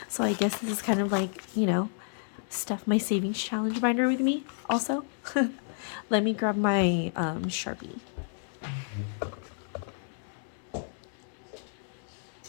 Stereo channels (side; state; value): right; silent; 57 dB below the other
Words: So I guess this is kind of like, you know, stuff my savings challenge binder with me also. Let me grab my Sharpie.